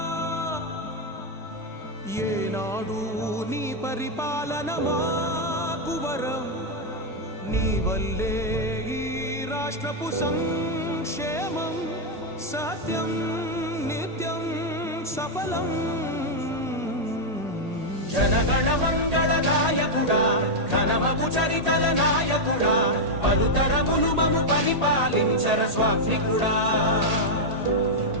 ఏనాడు నీ పరిపాలన మాకు వరం నీ వల్లే ఈ రాష్ట్రపు సంక్షేమం సత్యం నిత్యం సఫలం జనగణ మంగళ గాయకుడా ఘనమగు చరితల నాయకుడా పలుతరములు మము పరిపాలించర స్వామికుడా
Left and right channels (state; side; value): late; left; 1.8 ms